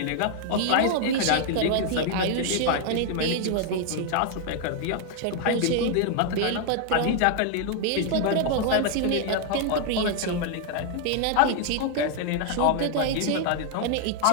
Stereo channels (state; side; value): different; both; correlation 0.00